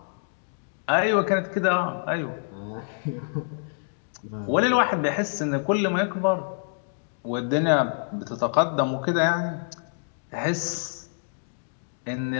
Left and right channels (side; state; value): right; silent; digital silence